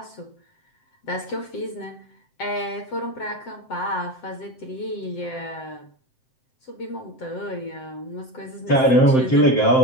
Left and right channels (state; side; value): late; right; 7.7 ms